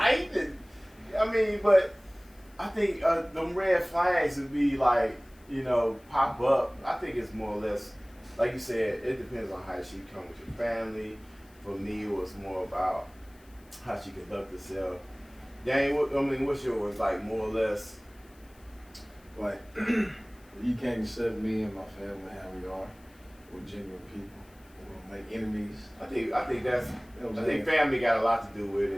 I mean, but I think them red flags would be like, you know, pop up. I think it's more or less, like you said, it depends on how she come with your family. For me, it was more about how she conduct herself. Dang, what's yours? Like more or less. Like, you can't accept me and my family how we are. We're genuine people. We don't make enemies. I think that's. You know what I I'm think saying? family got a lot to do with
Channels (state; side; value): noise; left; hiss, 29 dB below the sound